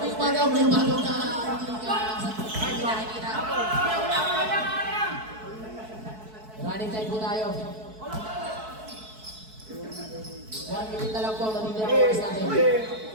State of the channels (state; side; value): late; left; 4.6 ms